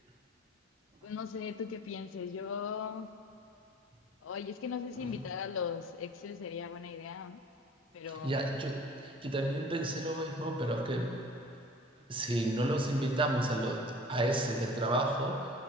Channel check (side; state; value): both; normal; correlation 0.47